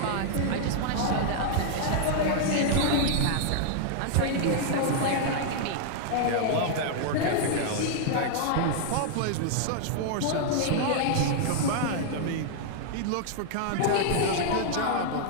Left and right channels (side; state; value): both; different; correlation -0.01